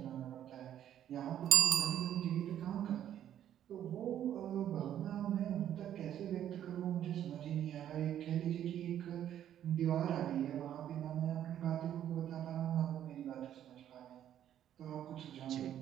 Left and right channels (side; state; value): left; quieter; 10.7 dB